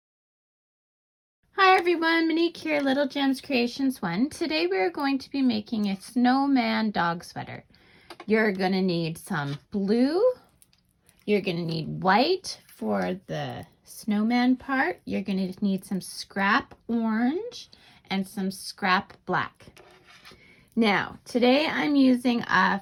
Hi everyone, Monique here, Little Gems Creations 1. Today we are going to be making a Snowman dog sweater. You're going to need some blue, you're going to need white for the snowman part, you're going to need some scrap orange, and some scrap black. Now, today I'm using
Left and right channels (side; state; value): both; identical; correlation 1.00